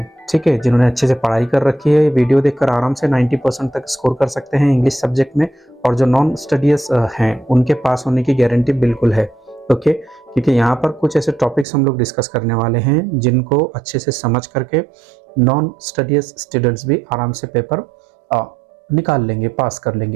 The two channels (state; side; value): drops out; left; at 11.7 s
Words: ठीक है, जिन्होंने अच्छे से पढ़ाई कर रखी है, वीडियो देखकर आराम से 90% तक स्कोर कर सकते हैं इंग्लिश सब्जेक्ट में। और जो नॉन स्टडीज हैं उनके पास होने की गारंटी बिल्कुल है। ओके, क्योंकि यहाँ पर कुछ ऐसे टॉपिक्स हम लोग डिस्कस करने वाले हैं जिनको अच्छे से समझ करके नॉन स्टडीज स्टूडेंट्स भी आराम से पेपर निकाल लेंगे, पास कर